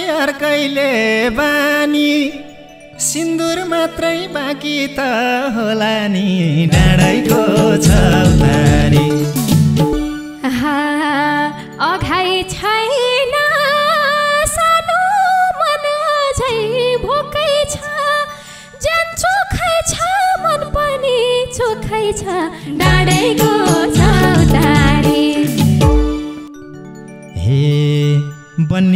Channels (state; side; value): identical; both; correlation 1.00